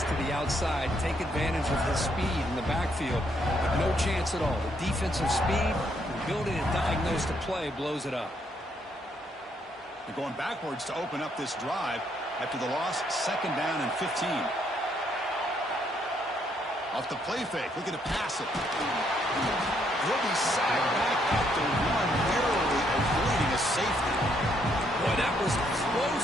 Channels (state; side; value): normal; both; correlation 0.72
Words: to the outside, take advantage of his speed in the backfield. But no chance at all. The defensive speed, the ability to diagnose the play blows it up. They're going backwards to open up this drive after the loss. 2nd down and 15. Off the play fake, looking to pass it. He'll be sacked back at the 1, narrowly avoiding a safety. Boy, that was